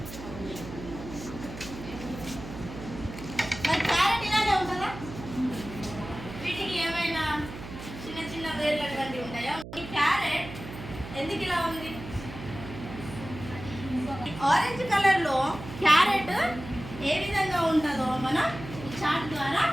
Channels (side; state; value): right; noise; hum, 12 dB below the sound